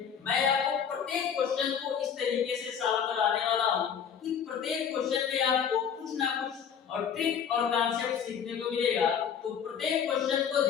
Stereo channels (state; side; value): quieter; right; 7.7 dB